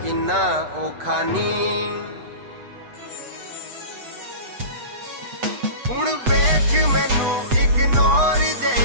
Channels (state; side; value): late; left; 8.1 ms